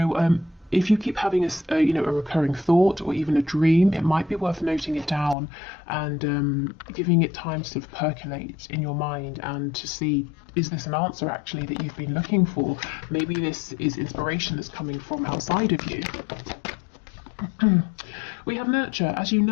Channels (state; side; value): drops out; right; at 5.4 s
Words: if you keep having a recurring thought or even a dream, it might be worth noting it down and giving it time to sort of percolate in your mind and to see, is this an answer actually that you've been looking for? Maybe this is inspiration that's coming from outside of you. We have nurture. As you